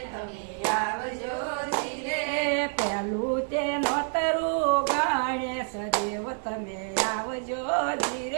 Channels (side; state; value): left; silent; 59 dB below the other